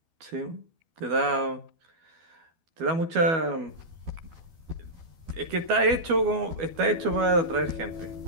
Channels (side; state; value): left; late; 12 ms